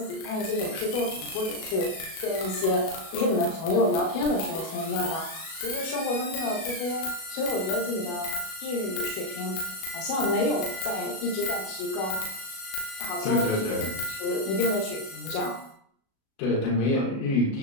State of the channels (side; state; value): right; late; 37 ms